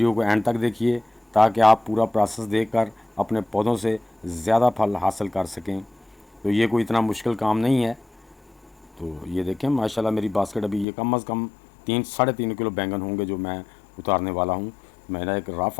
को एंड तक देखिए, ताकि आप पूरा प्रोसेस देखकर अपने पौधों से ज़्यादा फल हासिल कर सकें। तो ये कोई इतना मुश्किल काम नहीं है। तो ये देखें माशाल्लाह मेरी बास्केट, अभी ये कम अज़ कम 3-3.5 किलो बैंगन होंगे जो मैं उतारने वाला हूँ। मेरा एक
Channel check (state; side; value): drops out; right; at 10.9 s